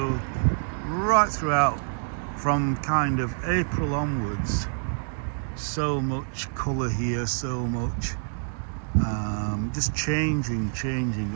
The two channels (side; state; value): left; silent; 60 dB below the other